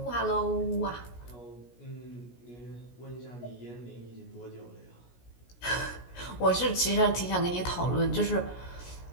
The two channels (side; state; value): right; late; 17 ms